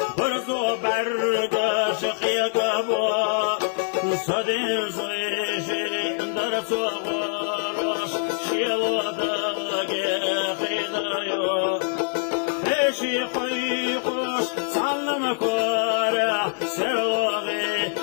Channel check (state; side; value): silent; right; digital silence